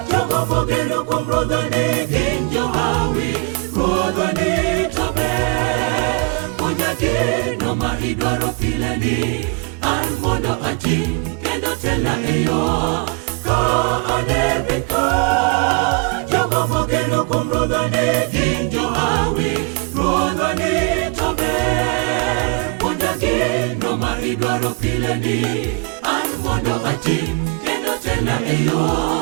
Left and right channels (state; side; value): quieter; left; 32.8 dB